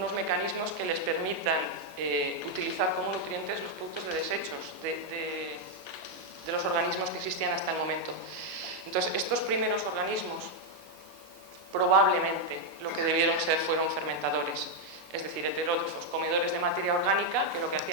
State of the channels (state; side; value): normal; both; correlation 0.01